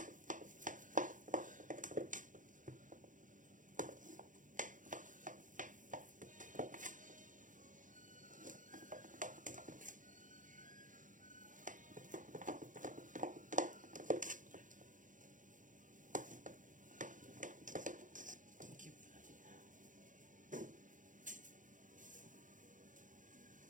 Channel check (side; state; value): left; late; 0.38 ms